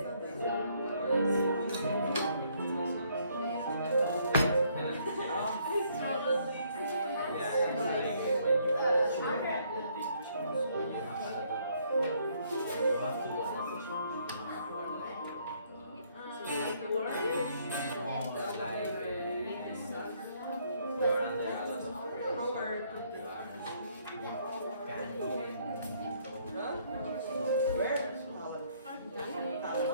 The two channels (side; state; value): both; inverted; correlation -0.67